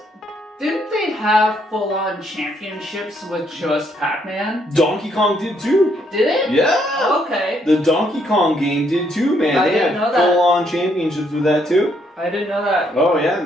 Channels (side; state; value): both; normal; correlation 0.72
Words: didn't they have full-on championships with just Pac-Man? Donkey Kong did too. Did it? Yeah. Okay. The Donkey Kong game did too, man. I they didn't had know that. full-on championships with that too. I didn't know that. Oh yeah,